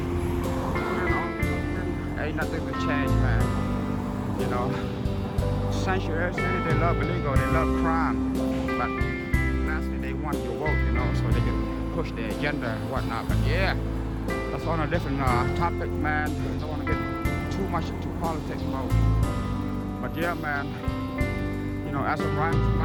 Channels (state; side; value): identical; both; correlation 1.00